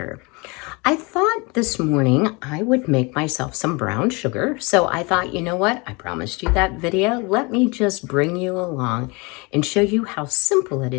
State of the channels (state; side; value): quieter; right; 27.9 dB